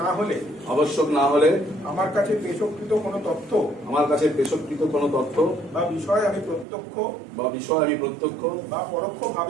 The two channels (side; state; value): left; drops out; at 6.7 s